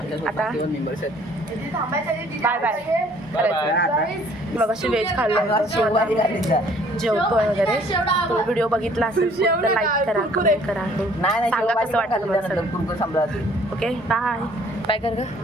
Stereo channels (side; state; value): both; normal; correlation 0.58